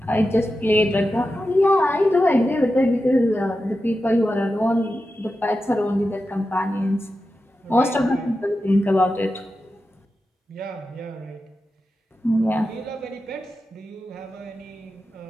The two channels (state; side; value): normal; both; correlation 0.91